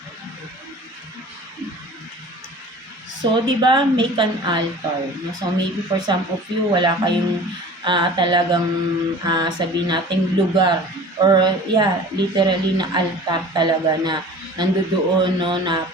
So, di ba, make an altar. So, maybe for some of you, wala kayong talagang sabihin nating lugar. Or, yeah, literally na altar talaga na nandoon, no, na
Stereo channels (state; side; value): normal; both; correlation 0.42